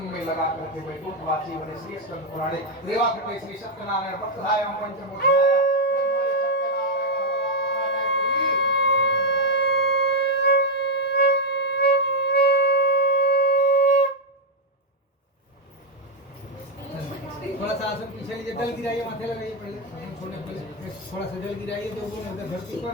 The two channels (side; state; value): both; normal; correlation 0.01